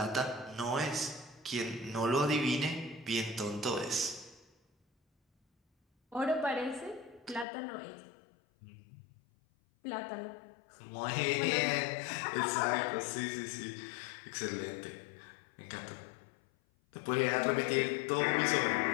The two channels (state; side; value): drops out; right; at 7.5 s